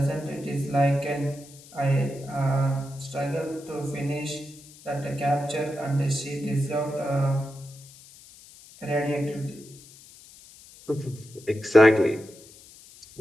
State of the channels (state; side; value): noise; left; hiss, 21 dB below the sound